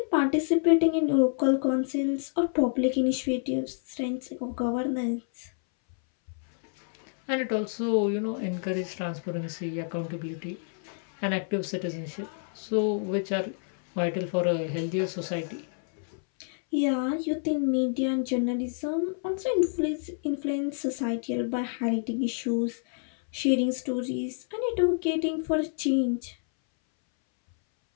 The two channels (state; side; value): silent; right; 59 dB below the other